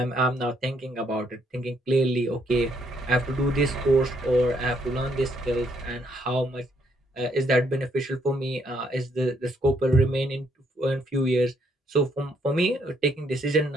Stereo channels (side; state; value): both; normal; correlation 0.71